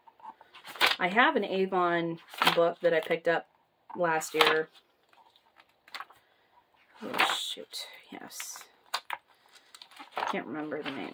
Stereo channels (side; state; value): both; identical; correlation 1.00